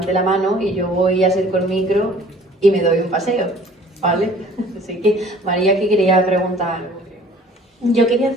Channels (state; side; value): normal; both; correlation 0.51